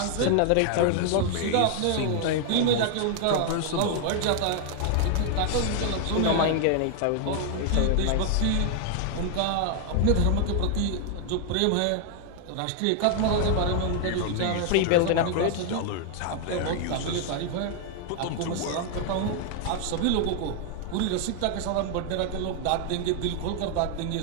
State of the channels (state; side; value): different; both; correlation 0.00